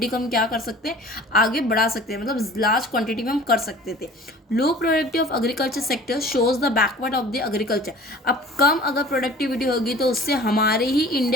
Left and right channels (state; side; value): normal; both; correlation 0.45